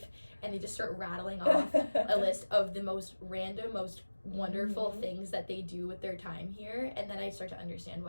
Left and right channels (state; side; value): inverted; both; correlation -1.00